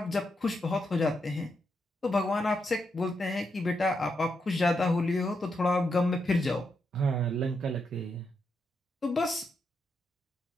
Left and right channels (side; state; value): both; normal; correlation 0.82